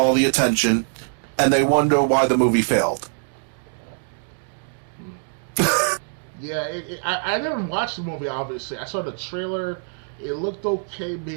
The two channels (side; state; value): left; silent; 59 dB below the other